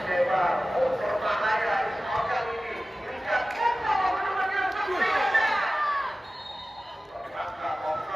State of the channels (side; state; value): both; normal; correlation 0.96